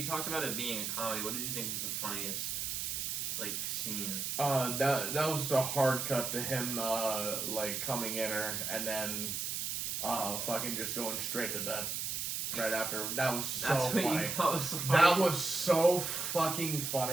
talked about it being a comedy. What did you think was the funniest scene? That was the hard cut to him coming in her and then fucking just going straight to bed right after. That was so funny. What you thought was so funny? That was so fucking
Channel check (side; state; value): right; noise; hiss, 2 dB below the sound